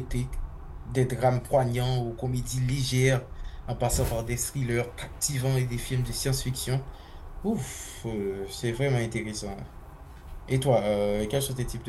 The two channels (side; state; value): both; identical; correlation 1.00